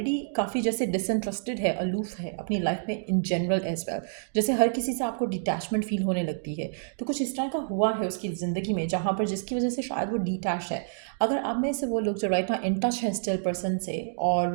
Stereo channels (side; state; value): left; silent; digital silence